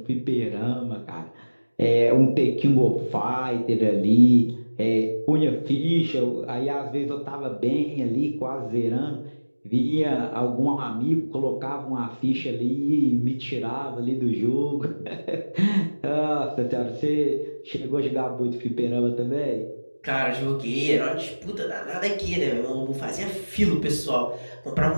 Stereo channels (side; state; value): both; inverted; correlation -1.00